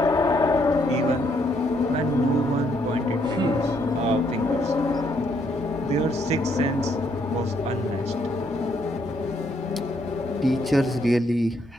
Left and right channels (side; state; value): both; normal; correlation 0.72